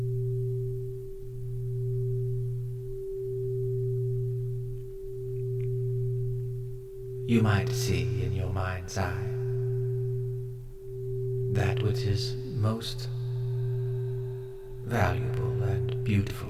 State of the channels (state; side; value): identical; both; correlation 1.00